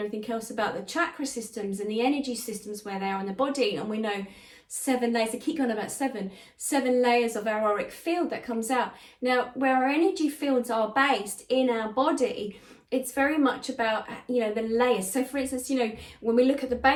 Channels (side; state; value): both; identical; correlation 1.00